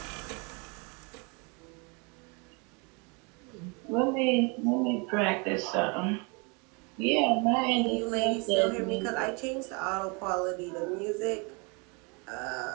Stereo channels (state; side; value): quieter; left; 31.8 dB